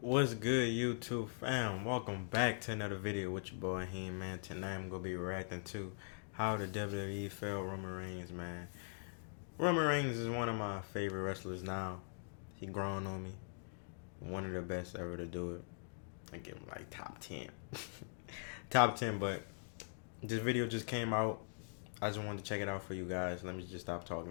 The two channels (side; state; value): right; silent; digital silence